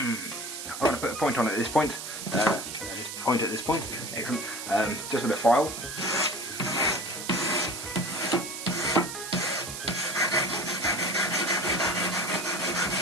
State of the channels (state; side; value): noise; right; hiss, 8 dB below the sound